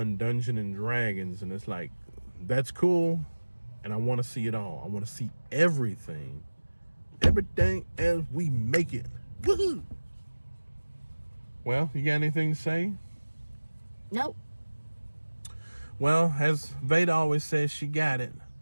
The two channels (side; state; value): both; inverted; correlation -1.00